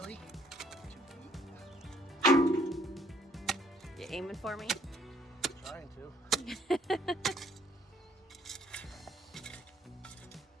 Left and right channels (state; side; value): normal; both; correlation 0.64